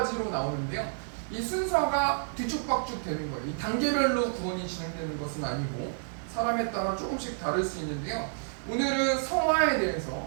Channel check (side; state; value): left; silent; digital silence